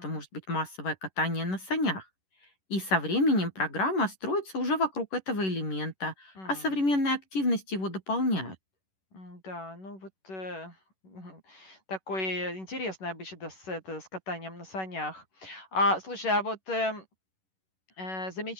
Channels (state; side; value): late; right; 11 ms